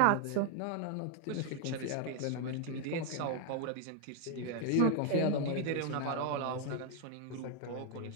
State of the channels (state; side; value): different; both; correlation 0.01